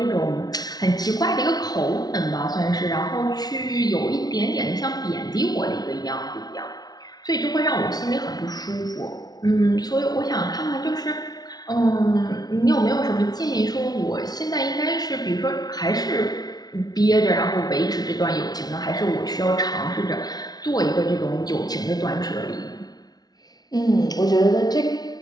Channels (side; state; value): right; late; 0.19 ms